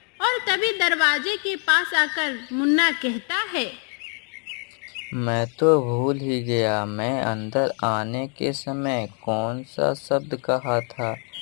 और तभी दरवाजे के पास आकर मुन्ना कहता है, मैं तो भूल ही गया, मैं अंदर आने के समय कौन सा शब्द कहा था।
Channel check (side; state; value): right; quieter; 40.0 dB